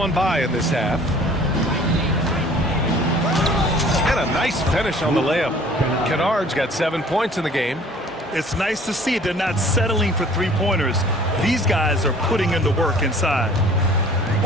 by in this half. And a nice finish on the layup. Kennard's got 7 points in the game. It's nice to see they're not settling for three-pointers. These guys are putting in the work inside.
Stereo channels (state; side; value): normal; both; correlation 0.51